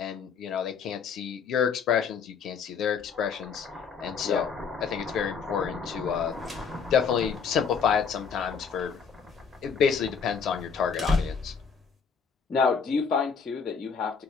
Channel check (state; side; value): quieter; right; 6.1 dB